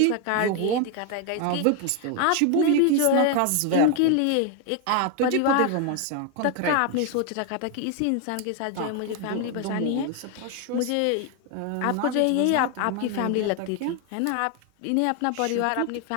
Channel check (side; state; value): both; different; correlation 0.01